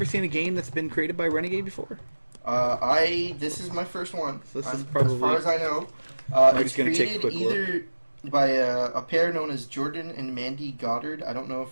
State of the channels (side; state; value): both; inverted; correlation -1.00